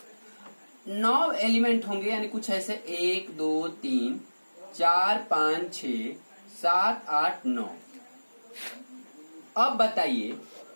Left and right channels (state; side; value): inverted; both; correlation -1.00